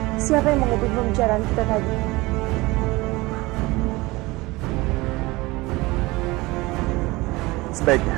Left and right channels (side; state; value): left; quieter; 21.7 dB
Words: siapa yang mengubah pembicaraan kita tadi?